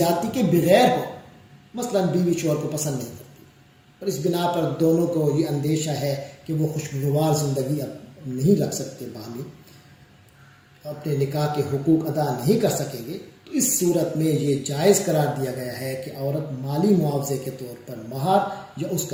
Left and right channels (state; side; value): identical; both; correlation 1.00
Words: کے بغیر ہو، مثلا بیوی شوہر کو پسند نہیں کرتی اور اس بنا پر دونوں کو یہ اندیشہ ہے کہ وہ خوشگوار زندگی اب نہیں رکھ سکتے، باہمی اپنے نکاح کے حقوق ادا نہیں کر سکیں گے، تو اس صورت میں یہ جائز قرار دیا گیا ہے کہ عورت مالی معاوضے کے طور پر مہر یا اس